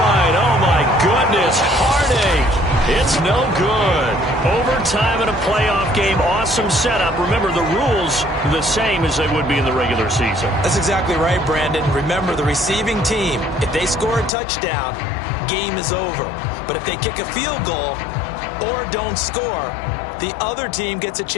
Oh, my goodness. Heartache. It's no good. Overtime in a playoff game. Awesome setup. Remember, the rules are the same as they would be in the regular season. That's exactly right, Brandon. Remember, the receiving team, if they score a touchdown, game is over. But if they kick a field goal or don't score, the other team gets a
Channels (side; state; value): right; drops out; at 14.3 s